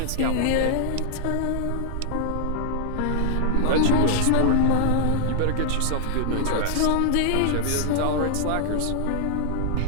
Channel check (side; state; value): both; different; correlation -0.01